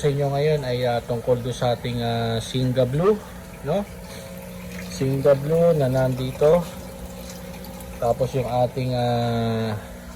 inyo ngayon ay tungkol do sa ating Singa Blue, no? Singa Blue na nandito. Tapos yung ating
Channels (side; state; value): both; identical; correlation 1.00